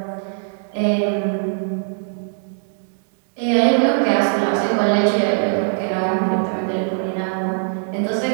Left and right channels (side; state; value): left; silent; 65 dB below the other